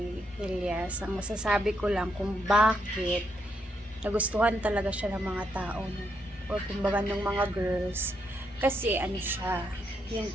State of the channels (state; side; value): normal; both; correlation 0.78